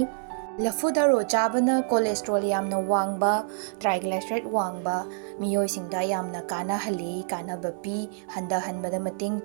Laphu Tharo chabana cholesterol yamna wangba triglyceride wangba miyoi singda yamna kana hali kana bapi handa hanbada mating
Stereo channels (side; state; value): left; silent; digital silence